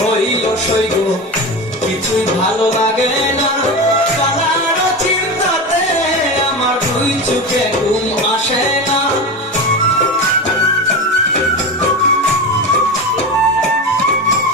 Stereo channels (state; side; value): normal; both; correlation 0.23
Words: হইল সইগ, কিছুই ভালো লাগে না। কালার চিন্তাতে আমার দুই চোখে ঘুম আসে না।